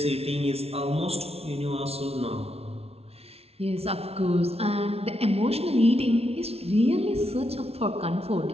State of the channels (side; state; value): left; late; 0.30 ms